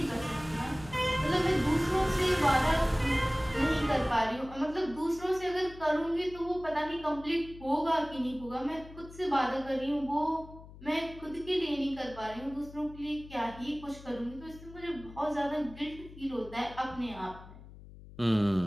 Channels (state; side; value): noise; left; hum, 17 dB below the sound